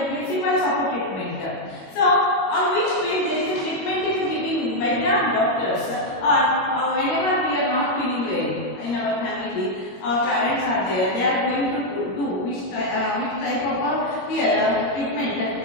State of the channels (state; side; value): late; right; 22 ms